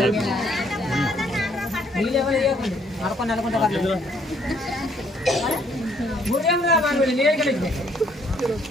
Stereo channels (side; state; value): both; normal; correlation 0.66